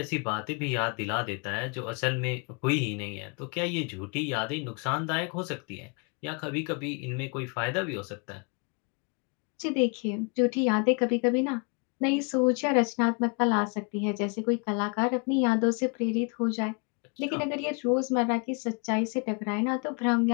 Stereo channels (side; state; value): right; quieter; 33.7 dB